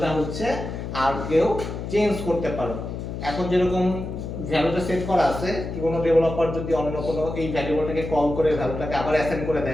হচ্ছে আর কেউ চেঞ্জ করতে পারো। এখন যেরকম ভ্যালুটা সেট করা আছে, কি কোনো ডেভেলপার যদি অন্য কোনো এই ভ্যারিয়েবলটাকে কল করে ভ্যালুটাকে আবার অ্যাসাইন করে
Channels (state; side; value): noise; left; hum, 6 dB below the sound